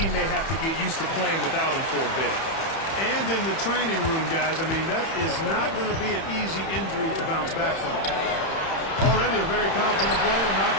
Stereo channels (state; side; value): late; right; 31 ms